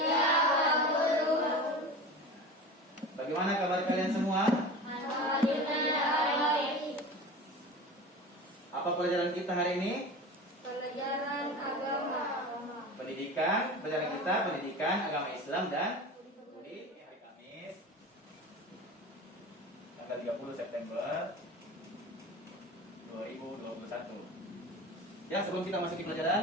Pak Guru. Bagaimana kabar kalian semua? Alhamdulillah baik. Apa pelajaran kita hari ini? Pelajaran agama. Pelajaran kita pendidikan agama Islam dan budi hari Kamis tanggal 30 September 2021. Ya, sebelum kita masuk ke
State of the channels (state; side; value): normal; both; correlation 0.33